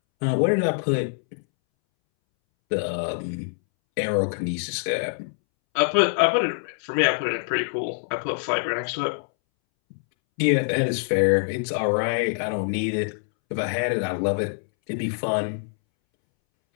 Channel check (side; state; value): right; silent; 62 dB below the other